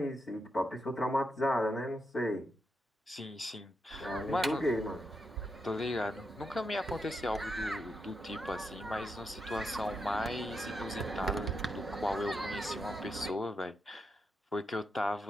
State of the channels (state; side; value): normal; both; correlation 0.84